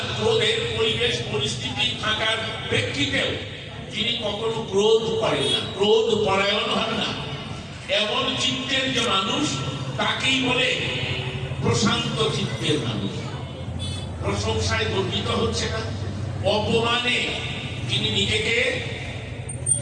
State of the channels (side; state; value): both; identical; correlation 1.00